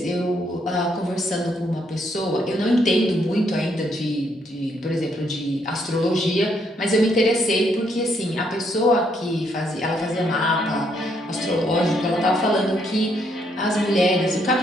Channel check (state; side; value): normal; both; correlation 0.73